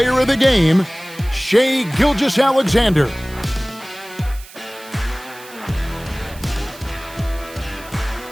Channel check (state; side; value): noise; right; hiss, 19 dB below the sound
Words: of the game, Shai Gilgeous-Alexander.